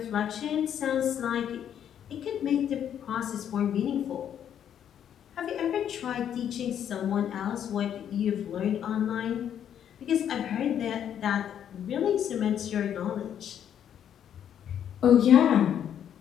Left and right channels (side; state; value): right; quieter; 9.4 dB